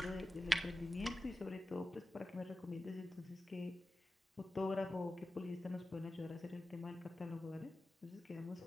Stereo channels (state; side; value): normal; both; correlation 0.94